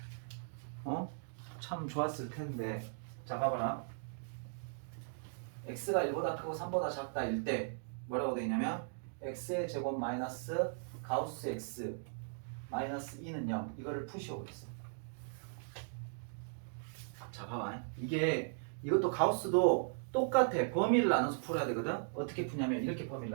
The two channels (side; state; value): left; silent; digital silence